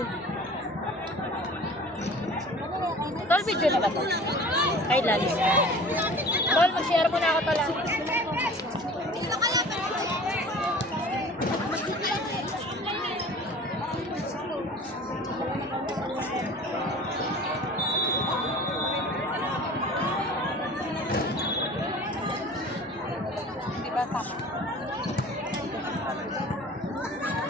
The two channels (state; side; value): normal; both; correlation 0.43